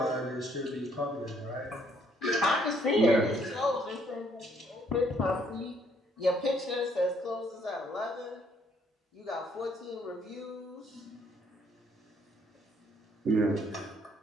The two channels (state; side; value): normal; both; correlation 0.66